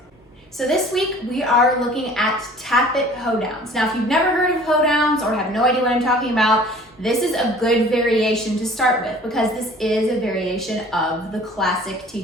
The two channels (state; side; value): normal; both; correlation 0.48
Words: So this week we are looking at Tap It Hoedowns. Now, if you've never heard of Hoedowns or have no idea what I'm talking about, this is a good variation to start with because this is a variation of the classic